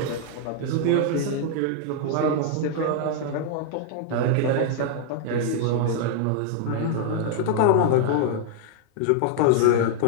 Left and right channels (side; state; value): both; different; correlation -0.01